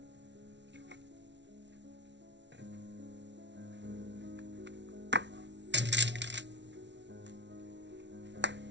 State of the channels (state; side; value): late; left; 0.51 ms